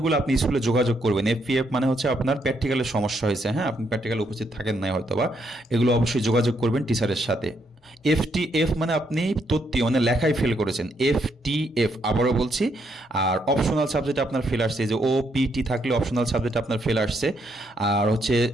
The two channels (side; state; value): both; normal; correlation 0.75